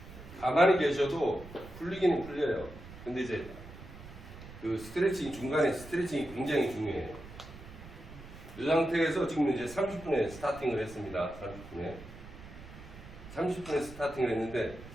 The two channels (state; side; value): noise; right; rumble, 16 dB below the sound